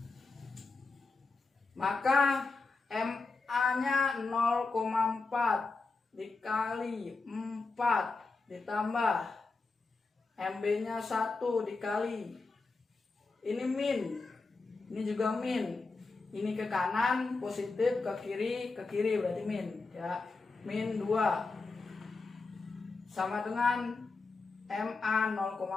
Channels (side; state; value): right; quieter; 3.9 dB